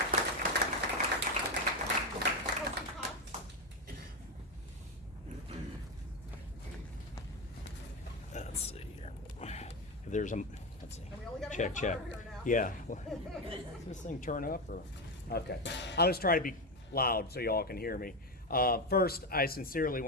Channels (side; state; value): both; normal; correlation 0.13